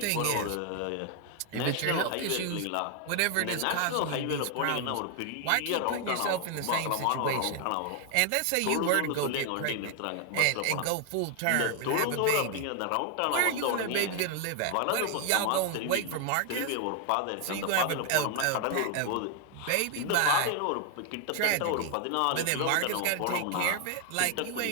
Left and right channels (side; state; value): both; different; correlation 0.00